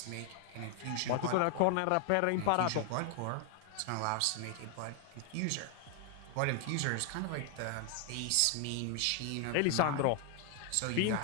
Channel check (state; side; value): different; both; correlation 0.00